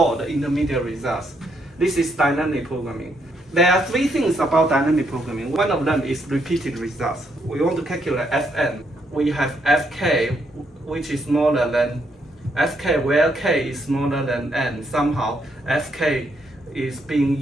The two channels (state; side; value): normal; both; correlation 0.75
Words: the intermediate results. This is dynamic programming. There are 3 things about dynamic programming. One of them is repeated results. We want to calculate fn. We have fk, which is smaller than fk, where k is smaller than n. Somehow fk is being